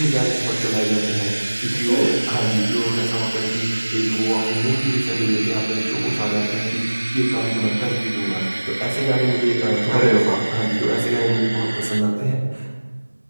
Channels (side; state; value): both; inverted; correlation -1.00